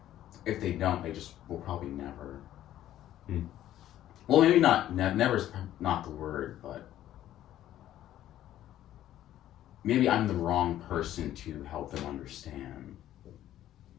if they don't, they just will probably never. Hmm. Well, maybe not. Never is not the word, but maybe I'm the wrong person to help them understand.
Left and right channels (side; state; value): right; quieter; 12.7 dB